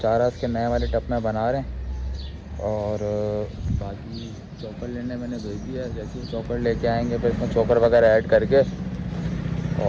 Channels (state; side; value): identical; both; correlation 1.00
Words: उसके नए वाले टप में बना रहे हैं और बाकी चोकर लेने मैंने भेज दिया है। जैसे ही चोकर लेके आएंगे फिर इसमें चोकर वगैरह ऐड करके